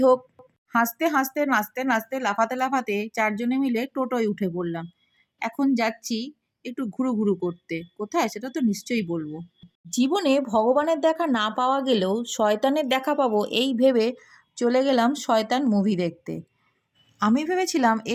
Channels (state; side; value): identical; both; correlation 1.00